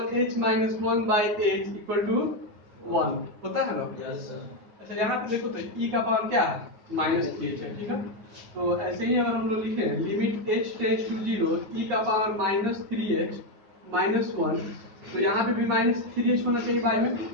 h minus 1 by h equal to 1 होता है ना। अच्छा यहाँ पे देखो तो e का पावर क्या है माइनस 3h है, ठीक है। तो ऐसे ही अगर हम लोग लिखे limit h tends to 0 e का पावर माइनस 3h माइनस 1, तो यहाँ पे भी माइनस 3h होना चाहिए बाई में,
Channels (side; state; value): left; late; 9.5 ms